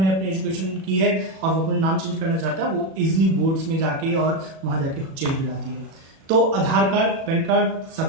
अपनी एजुकेशन की है और वो अपना नाम चेंज करना चाहता है, वो इजिली बोर्ड्स में जाके और वहां जाके चेंज हो जाती है। तो आधार कार्ड, पैन कार्ड, सब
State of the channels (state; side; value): late; left; 37 ms